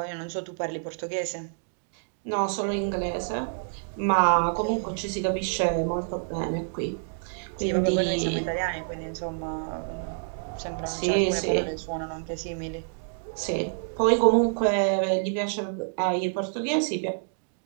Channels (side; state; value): left; silent; digital silence